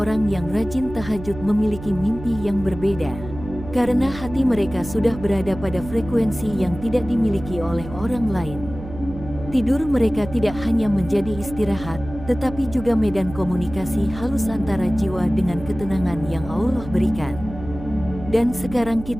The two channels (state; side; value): noise; right; hum, 12 dB below the sound